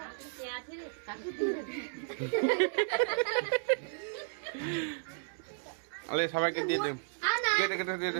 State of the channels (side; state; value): left; silent; digital silence